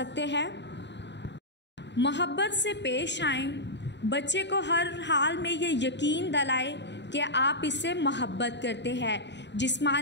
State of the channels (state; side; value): late; right; 0.51 ms